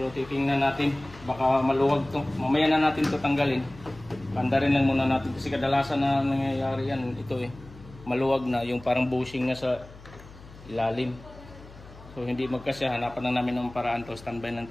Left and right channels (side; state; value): left; noise; hum, 19 dB below the sound